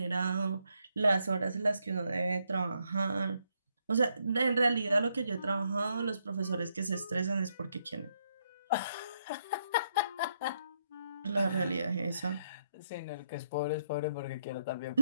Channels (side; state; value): both; inverted; correlation -0.76